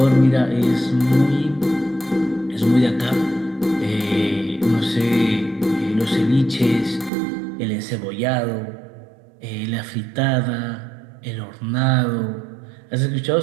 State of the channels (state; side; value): drops out; left; at 7.1 s